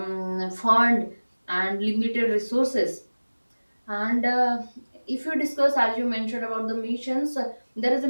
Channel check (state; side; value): inverted; both; correlation -1.00